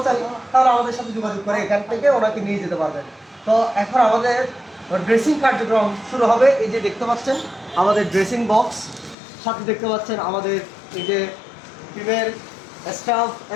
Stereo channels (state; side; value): drops out; right; at 9.2 s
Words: তাহলে আমাদের সাথে যোগাযোগ করে এখান থেকে ওনাকে নিয়ে যেতে পারবেন। তো এখন আমাদের ড্রেসিং কার্যক্রম শুরু হবে। এই যে দেখতে পাচ্ছেন আমাদের ড্রেসিং বক্স, সাথে দেখতে পাচ্ছেন আমাদের এই যে টিমের স্টাফ